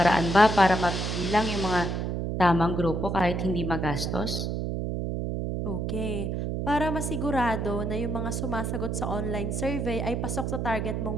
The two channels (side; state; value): right; noise; hum, 1 dB below the sound